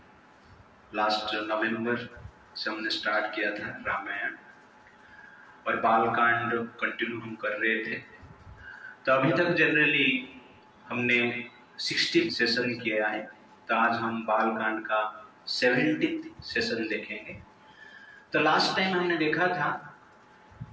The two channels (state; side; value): identical; both; correlation 1.00